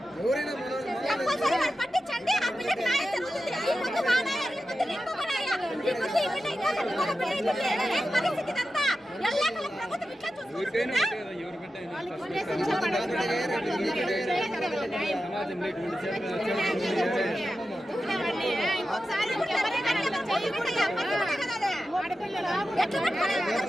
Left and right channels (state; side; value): normal; both; correlation 0.92